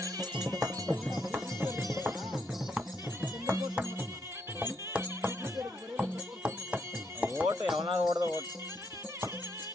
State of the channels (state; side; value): normal; both; correlation 0.77